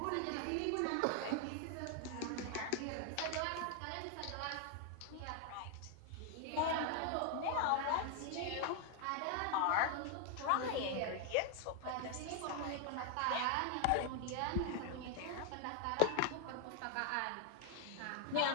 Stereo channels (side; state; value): both; different; correlation 0.00